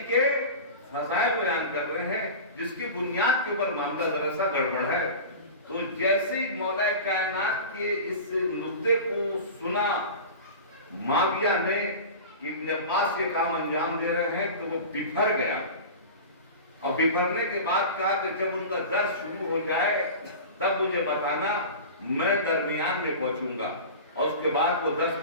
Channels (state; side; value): inverted; both; correlation -0.32